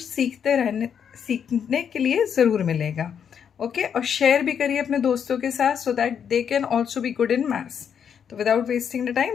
सीखने के लिए ज़रूर मिलेगा। ओके, और शेयर भी करिए अपने दोस्तों के साथ so that they can also be good in maths. तो without wasting the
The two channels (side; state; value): right; quieter; 7.8 dB